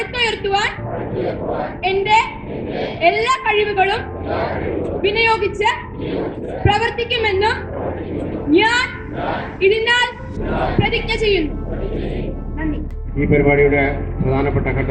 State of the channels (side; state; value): both; identical; correlation 1.00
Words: എന്റെ എല്ലാ കഴിവുകളും വിനിയോഗിച്ച് പ്രവർത്തിക്കുമെന്നും ഞാൻ ഇതിനാൽ പ്രതിജ്ഞ ചെയ്യുന്നു. നന്ദി. ഈ പരിപാടിയുടെ പ്രധാനപ്പെട്ട